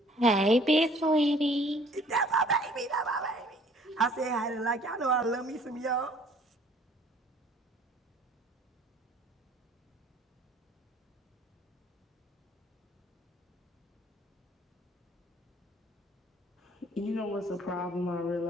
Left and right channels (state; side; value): normal; both; correlation 0.56